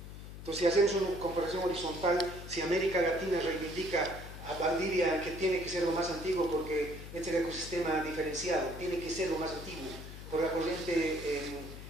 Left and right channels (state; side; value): noise; left; hum, 12 dB below the sound